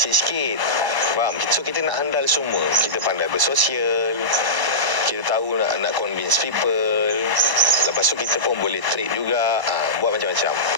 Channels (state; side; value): late; left; 1.0 ms